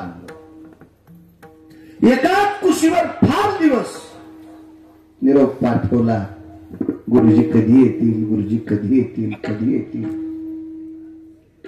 एकाच कुशीवर 5 दिवस निरोप पाठवला. गुरुजी कधी येतील, गुरुजी कधी येतील, कधी येतील.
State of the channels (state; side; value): identical; both; correlation 1.00